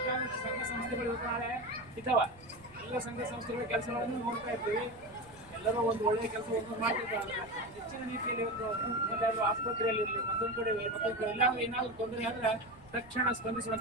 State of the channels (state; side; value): noise; right; rumble, 23 dB below the sound